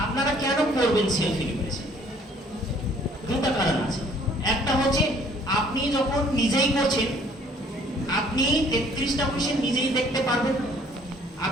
আপনারা কেন করবেন সেলফ ইনুমারেশন? দুটো কারণ আছে। একটা হচ্ছে আপনি যখন নিজেই করছেন আপনি 33টা কোশ্চেন নিজেই দেখতে পারবেন,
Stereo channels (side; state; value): both; normal; correlation 0.58